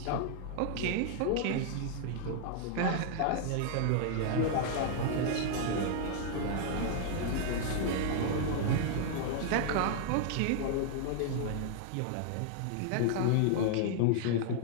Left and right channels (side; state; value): both; different; correlation -0.01